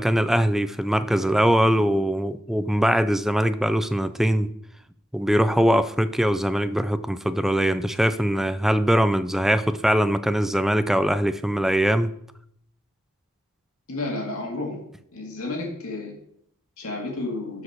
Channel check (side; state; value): both; normal; correlation 0.92